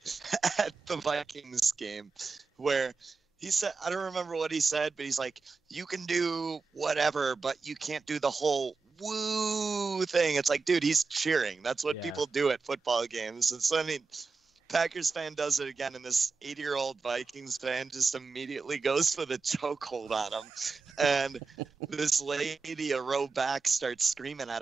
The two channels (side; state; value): left; quieter; 4.5 dB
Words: at the Vikings game, where he said, I don't remember what he said, but he's like, you can do whatever, but you can't do the whole woo thing. It's like, dude, he's cheering. That's what people do at football games. And so, I mean, Packers fan does it again, and this 80-year-old Vikings fan just immediately goes for the chokehold on him. And this lady a row back starts screaming at